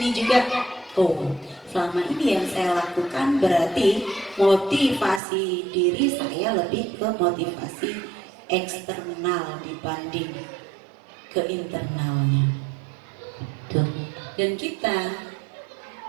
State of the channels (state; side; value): drops out; left; at 5.2 s